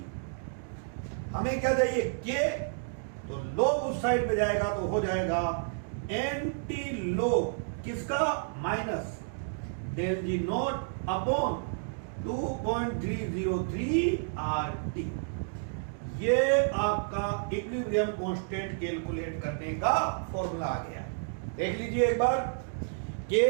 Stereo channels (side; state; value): left; silent; digital silence